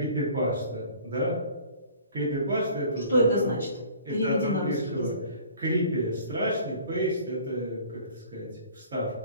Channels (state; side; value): inverted; both; correlation -0.49